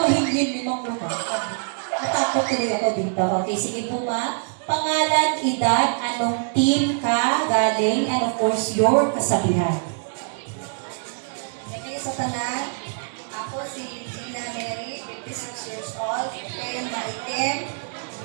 ni Pangulong Marcos. Natakot tuloy ako dito. Okay, sige po ma'am. Pangalan, edad, anong team ka galing, and of course, your kasabihan. Gabi sa tanan, ako si Gina Mary, 56 years old, ngayon maitim.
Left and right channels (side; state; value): left; silent; digital silence